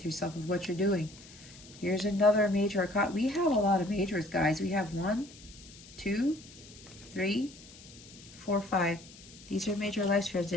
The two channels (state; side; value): noise; left; hiss, 20 dB below the sound